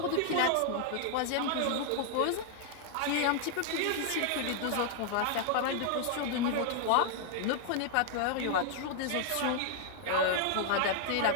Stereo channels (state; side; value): different; both; correlation 0.00